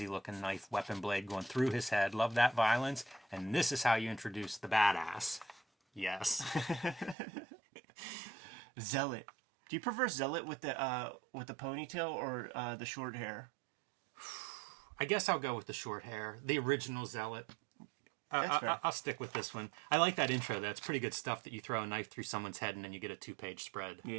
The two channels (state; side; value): drops out; left; at 7.2 s